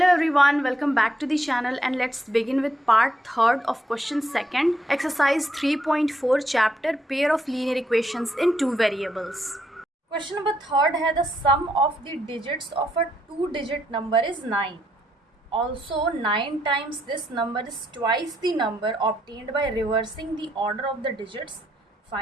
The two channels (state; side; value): normal; both; correlation 0.76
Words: everyone, welcome back to the channel and let's begin with part 3rd of question 2nd, exercise 3.4 chapter pair of linear equations in two variables. Question number 3rd है the sum of the digits of a 2-digit number is 9. Also 9 times this number is twice the number obtained by reversing the order of the digits.